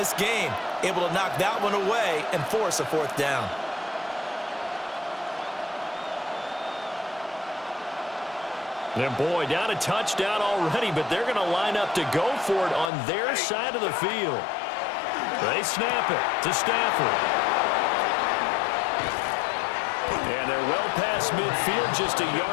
game. Able to knock that one away and force a 4th down. And boy, down a touchdown already, but they're going to line up to go for it on their side of the field. They snap it to Stafford. And they're well past midfield, just a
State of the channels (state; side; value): drops out; right; at 12.9 s